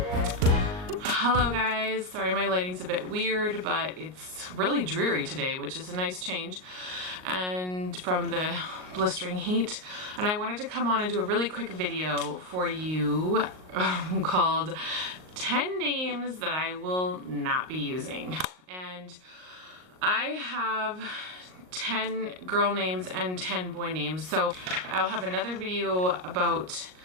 Hello guys, sorry my lighting's a bit weird, but it's really dreary today, which is a nice change and from the blistering heat. And I wanted to come on and do a really quick video for you called 10 names that I will not be using. And I have 10 girl names and 10 boy names. So I'll have another video about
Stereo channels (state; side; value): late; left; 38 ms